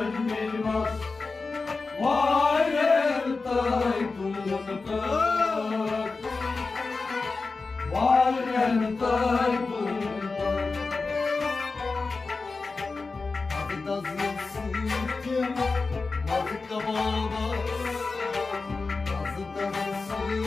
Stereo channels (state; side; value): quieter; right; 4.0 dB